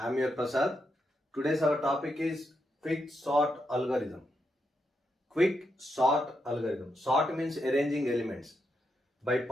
your Prasad. Today's our topic is quick sort algorithm. Quick sort algorithm. Sort means arranging elements by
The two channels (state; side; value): normal; both; correlation 0.83